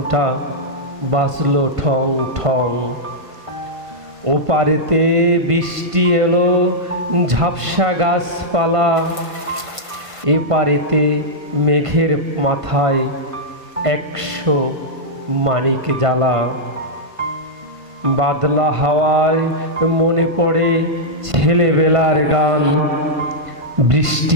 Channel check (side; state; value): left; late; 1.5 ms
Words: বাজলো ঠং ঠং। ওপারেতে বৃষ্টি এলো ঝাপসা গাছপালা, এপারেতে মেঘের মাথায় 100 মানিক জ্বালা। বাদলা হাওয়ায় মনে পড়ে ছেলেবেলার গান,